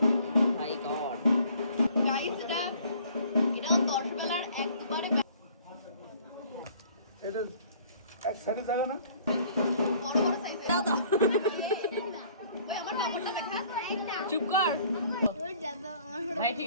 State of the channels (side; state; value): both; inverted; correlation -0.56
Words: মাই গড। গাইস, এটা 10 বেলার এক দুবারে এটা এক সাইডে থাকে না। বড় বড় সাইজের দাদা। ওই আমার নাম্বারটা দেখা। চুপ কর ভাই, ঠিক